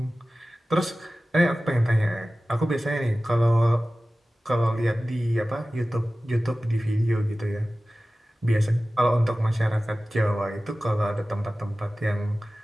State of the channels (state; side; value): normal; both; correlation 0.96